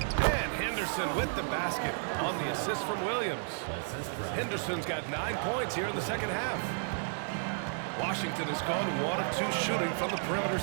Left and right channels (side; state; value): left; silent; 56 dB below the other